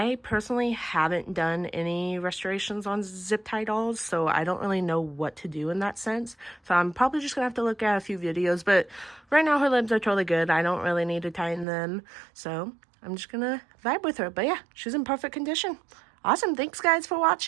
personally haven't done any restorations on zip tie dolls, so I don't really know what to do in that sense. So I'm probably just gonna have to look at a few videos, but right now her limbs are totally good. I don't really need to tighten them, so I'm just gonna vibe with her. But yeah, she's in perfect condition. Awesome, thanks guys for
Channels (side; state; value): left; drops out; at 11.7 s